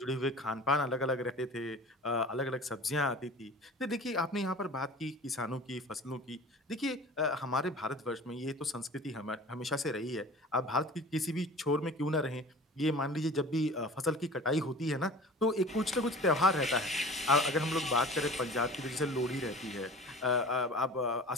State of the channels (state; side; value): normal; both; correlation 0.40